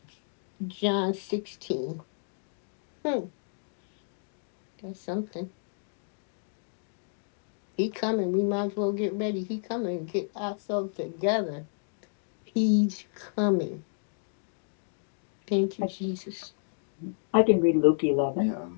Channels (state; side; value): silent; right; digital silence